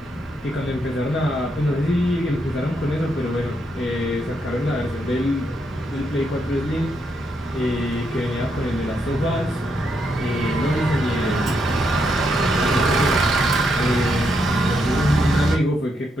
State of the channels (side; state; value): both; normal; correlation 0.79